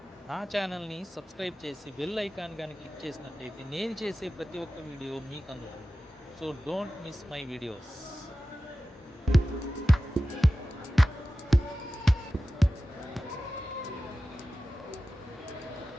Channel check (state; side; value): normal; both; correlation 0.95